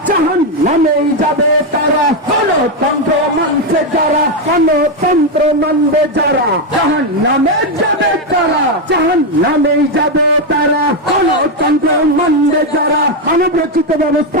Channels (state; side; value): normal; both; correlation 0.05